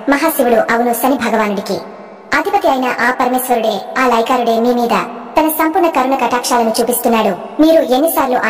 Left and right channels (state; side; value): identical; both; correlation 1.00